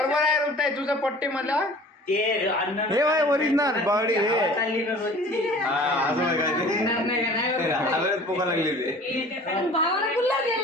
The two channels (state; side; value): normal; both; correlation 0.46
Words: आहे रुपये तुझं पट्टी मला हे वय ओरिजिनल बावडी हे पोका लागली भावाला गुल्ला